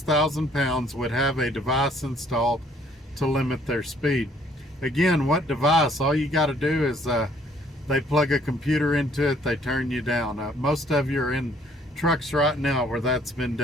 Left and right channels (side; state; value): both; normal; correlation 0.62